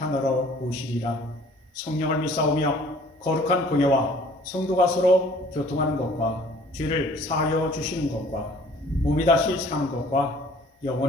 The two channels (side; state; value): both; normal; correlation 0.53